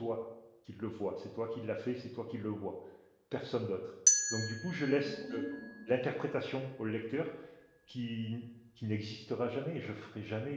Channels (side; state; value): both; identical; correlation 1.00